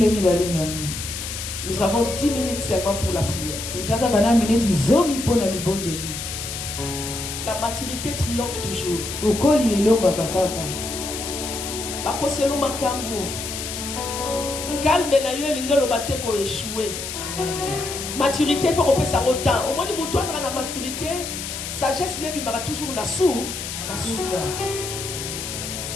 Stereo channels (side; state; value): left; noise; hiss, 6 dB below the sound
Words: Nous avons 10 minutes seulement pour la prière. La maturité triomphe toujours. Bakoselo makambo. Calme na yo lingelo bateko échoué. Maturité il faut qu'on puisse en temps. Au moins de mon toit la maturité, sagesse ne bimara toujours na sou.